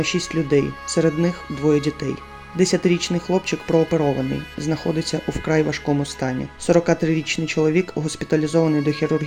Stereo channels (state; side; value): identical; both; correlation 1.00